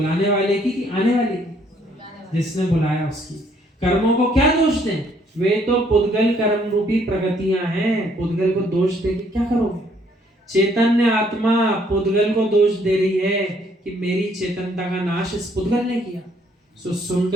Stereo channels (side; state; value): both; normal; correlation 0.66